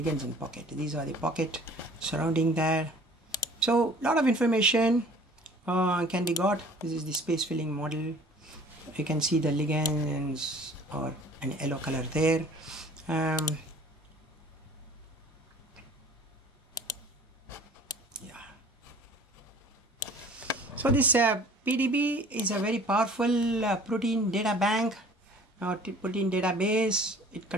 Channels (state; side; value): normal; both; correlation 0.49